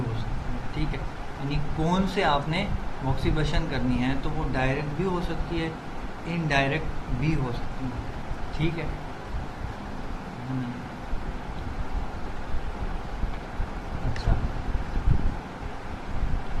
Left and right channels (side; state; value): both; identical; correlation 1.00